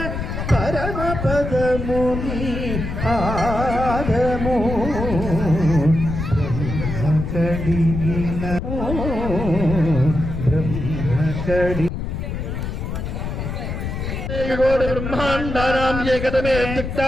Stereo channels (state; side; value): noise; left; rumble, 4 dB below the sound